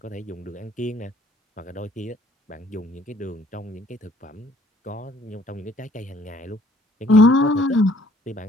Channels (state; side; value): normal; both; correlation 0.60